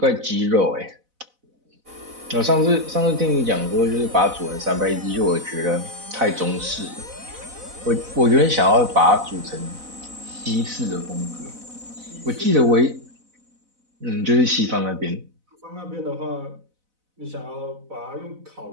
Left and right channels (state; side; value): late; left; 4.0 ms